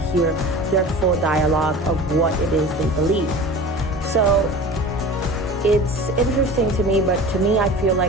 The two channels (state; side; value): normal; both; correlation 0.37